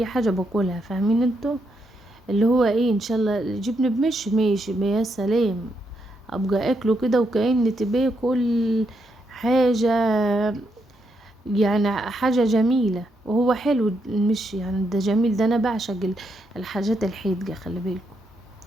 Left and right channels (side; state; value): both; normal; correlation 0.80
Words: حاجة باكلها، فاهمين انتوا؟ اللي هو ان شاء الله جبن بمشي ماشي يا سلام، ابقى اكله كده وكأني باكل حاجة يعني، حاجة جميلة. وهو حلو المشي يعني، ده جميل، ده انا بعشق الحاجات الحادقة، خلي بالكم